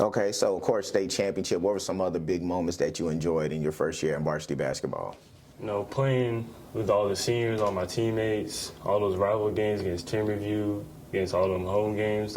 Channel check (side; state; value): both; identical; correlation 1.00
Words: Okay, so, of course, state championship. What were some other big moments that you enjoyed in your first year in varsity basketball? You know, playing with all the seniors, all my teammates, all those rival games against team review, against all them home games,